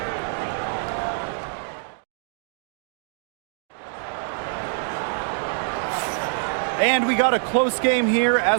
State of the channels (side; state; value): left; silent; digital silence